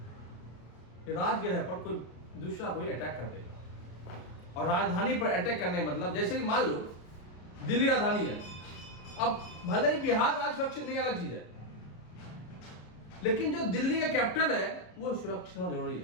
राजगृह पर कोई दूसरा कोई अटैक कर देगा। और राजधानी पर अटैक करने मतलब जैसे कि मान लो दिल्ली राजधानी है, अब भले ही बिहार राज्य सुरक्षित नहीं, अलग चीज है, लेकिन जो दिल्ली का कैपिटल है वो सुरक्षित होना जरूरी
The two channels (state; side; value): late; right; 33 ms